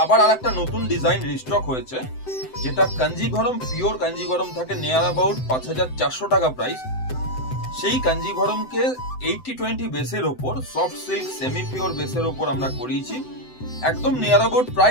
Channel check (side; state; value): right; late; 7.8 ms